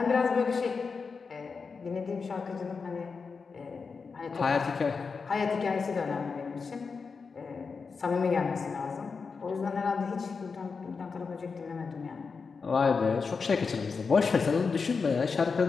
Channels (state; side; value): quieter; right; 5.0 dB